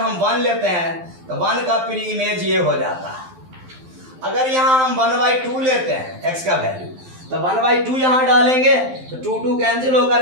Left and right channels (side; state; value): left; late; 12 ms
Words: 1 लेते हैं तो 1 का प्री इमेज ये हो जाता है। अगर यहाँ हम 1/2 लेते हैं x का वैल्यू, तो 1/2 यहाँ डालेंगे तो 2 कैंसिल